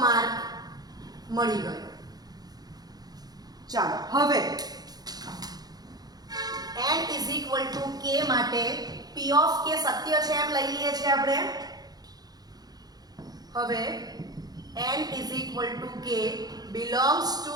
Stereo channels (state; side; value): late; left; 0.19 ms